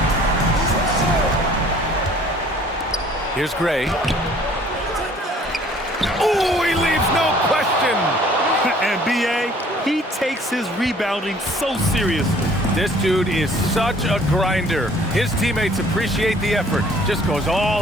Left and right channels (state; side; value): normal; both; correlation 0.56